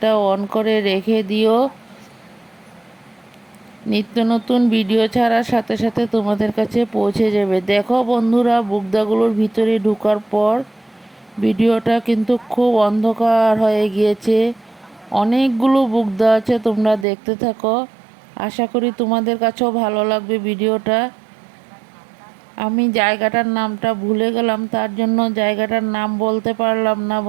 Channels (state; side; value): drops out; left; at 17.1 s